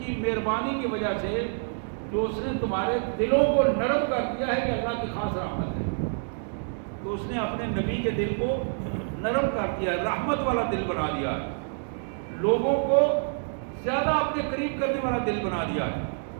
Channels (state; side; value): silent; left; digital silence